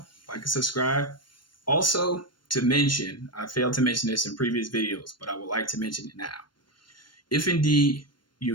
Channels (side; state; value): right; late; 0.72 ms